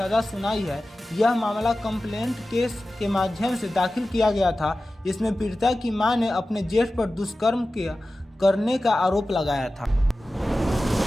सुनाई है। यह मामला कंप्लेंट केस के माध्यम से दाखिल किया गया था। इसमें पीड़िता की मां ने अपने जेठ पर दुष्कर्म करने का आरोप लगाया था।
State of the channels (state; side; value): normal; both; correlation 0.95